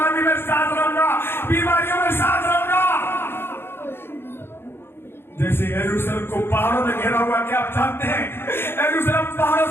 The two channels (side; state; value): right; late; 0.11 ms